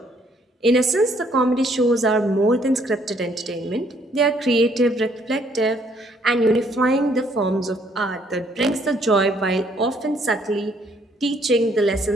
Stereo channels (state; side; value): normal; both; correlation 0.66